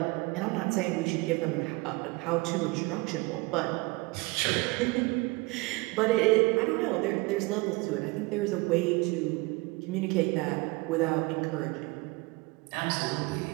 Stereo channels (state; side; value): quieter; left; 24.8 dB